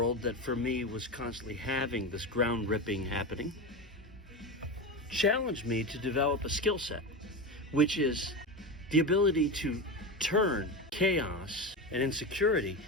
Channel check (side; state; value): both; normal; correlation 0.20